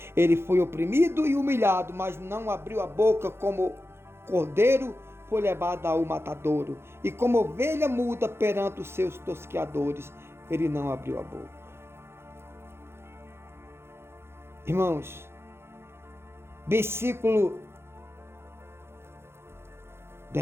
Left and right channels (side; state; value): left; late; 0.12 ms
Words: Ele foi oprimido e humilhado, mas não abriu a boca. Como cordeiro foi levado ao matadouro, e como ovelha muda perante os seus tosqueadores, ele não abriu a boca. Irmãos, versículo